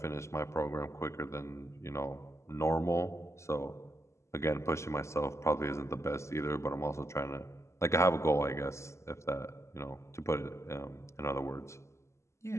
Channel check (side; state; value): right; late; 0.13 ms